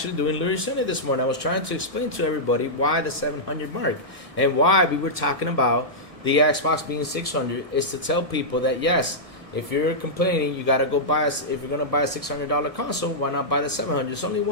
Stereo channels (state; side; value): late; left; 1.7 ms